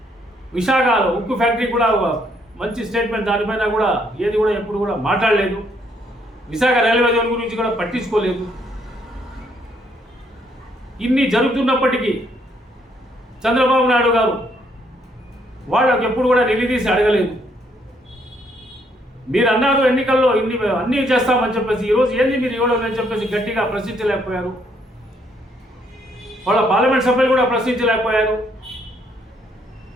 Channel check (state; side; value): normal; both; correlation 0.70